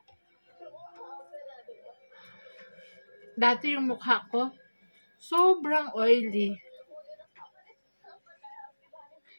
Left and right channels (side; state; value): both; inverted; correlation -1.00